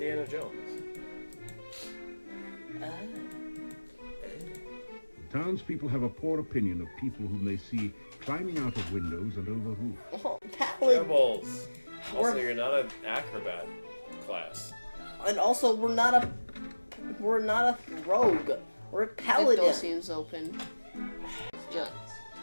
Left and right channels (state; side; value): inverted; both; correlation -1.00